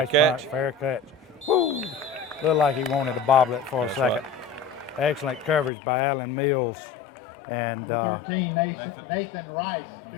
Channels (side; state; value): right; drops out; at 5.7 s